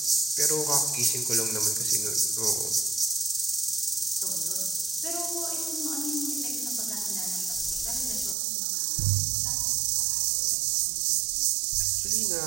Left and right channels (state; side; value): drops out; left; at 8.3 s